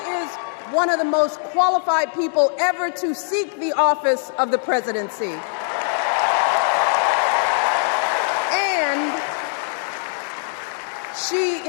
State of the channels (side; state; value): right; silent; 62 dB below the other